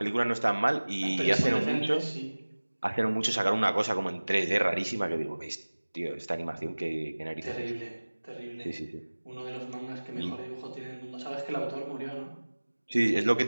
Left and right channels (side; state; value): both; inverted; correlation -1.00